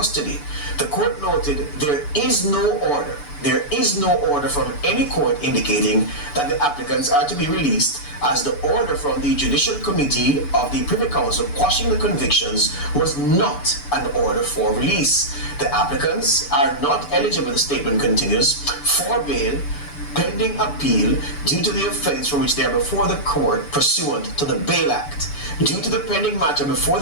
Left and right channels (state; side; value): late; right; 6.9 ms